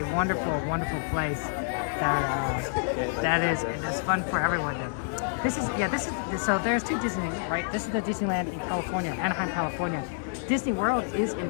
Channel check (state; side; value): silent; right; digital silence